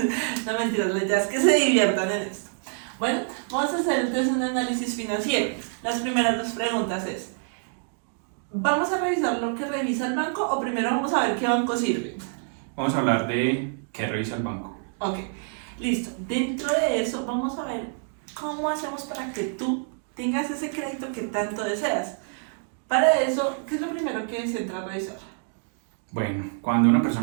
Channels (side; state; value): left; silent; 61 dB below the other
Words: No, mentiras, la idea es que se diviertan en esto. Bueno, vamos a hacer entonces un análisis financiero. Las primeras dos preguntas es: ¿vamos a revisar lo que revisa el banco o primero vamos a ver qué banco sirve? Vamos a hablar de qué revisa el banco. Ok, listo. Dentro de eso vamos a ver cómo hacemos para que tú tengas ese crédito que tanto deseas. Para eso, ¿qué es lo primero que se entra a revisar? Bueno, cuando una